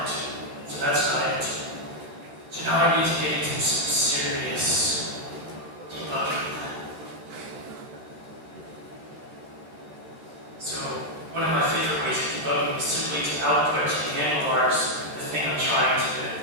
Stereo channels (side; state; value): left; late; 14 ms